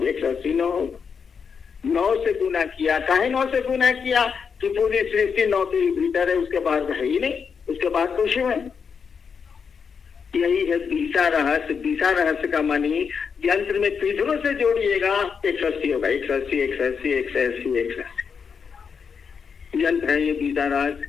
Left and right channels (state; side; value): quieter; right; 6.2 dB